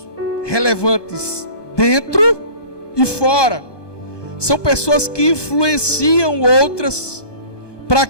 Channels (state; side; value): late; right; 1.2 ms